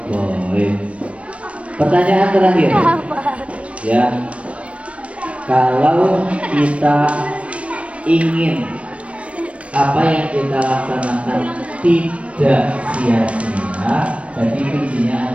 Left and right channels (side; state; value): left; late; 0.062 ms